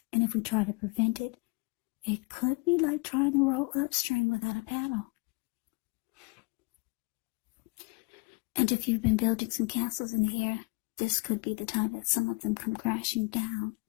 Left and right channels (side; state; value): right; quieter; 29.3 dB